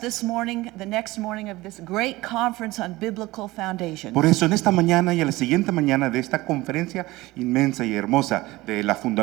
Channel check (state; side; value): quieter; left; 19.4 dB